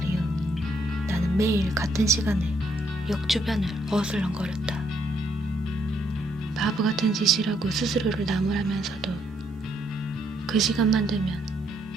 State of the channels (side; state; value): both; normal; correlation 0.72